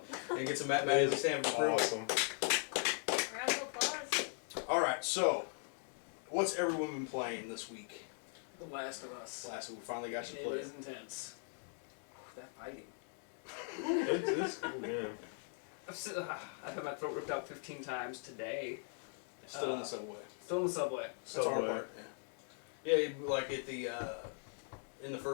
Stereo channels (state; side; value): silent; right; 51 dB below the other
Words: And get some Matt Mattingly sandwich approval. Awesome. Round of applause. Alright, so, what's everyone been playing this week? The Last of Us. Last week we finally got you It played. is intense. That fighting. It's cool game. I've had my throat ripped out 15 times today. Still in the subway. Still in the subway. That's our part. Yeah, like at the in the